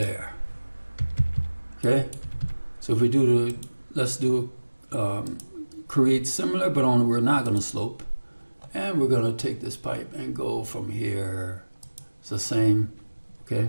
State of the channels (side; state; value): both; inverted; correlation -1.00